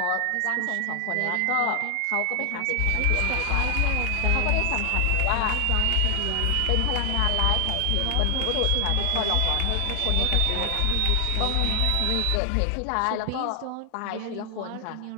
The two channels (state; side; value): different; both; correlation 0.00